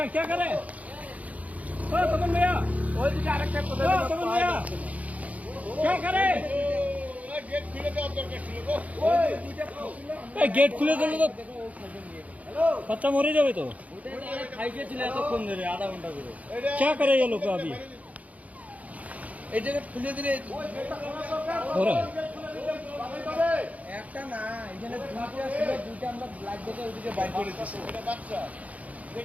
गेट खुले दिल तो बच्चा मरे जाए तो आधा घंटा क्या करे ये लोग अभी खुले दिले একটা না এখানে দুইটা আমরা ব্ল্যাক দেখে ওইদিকে বাইর করে দিছি বাচ্চা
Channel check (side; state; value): left; late; 0.070 ms